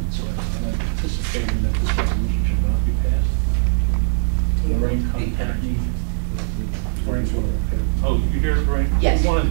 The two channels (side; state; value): left; silent; digital silence